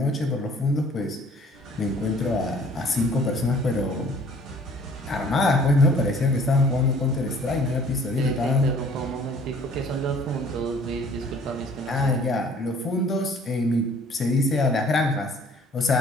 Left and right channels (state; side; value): normal; both; correlation 0.54